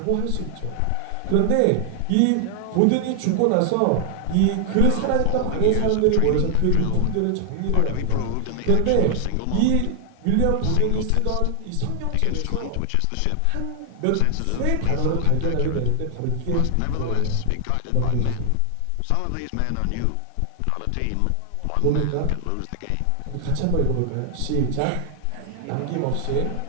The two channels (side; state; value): both; different; correlation 0.00